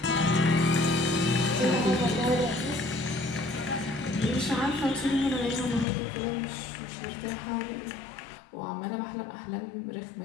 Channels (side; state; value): right; drops out; at 5.9 s